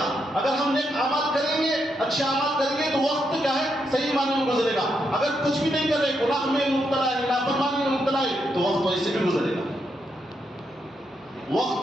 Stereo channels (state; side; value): normal; both; correlation 0.81